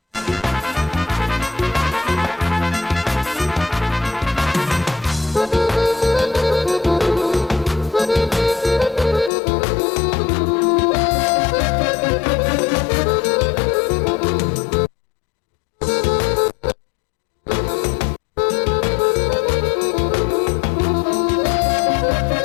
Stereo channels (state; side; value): drops out; right; at 9.3 s